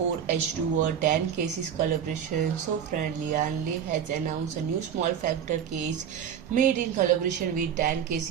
10 cases collaboration. So friend, LIAN Li has announced a new small factor case made in collaboration with 10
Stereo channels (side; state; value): left; quieter; 8.5 dB